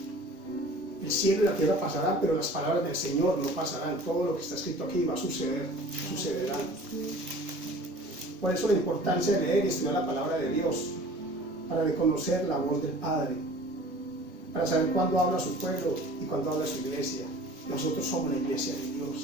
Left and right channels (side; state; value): both; normal; correlation 0.45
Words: El cielo y la tierra pasarán, pero las palabras del Señor no pasarán. Todo lo que está escrito aquí va a suceder, sucederá. Por eso la importancia de leer y estudiar la palabra de Dios, para reconocer la voz del Padre, para saber cuándo habla su pueblo y cuándo habla su iglesia. Nosotros somos la iglesia de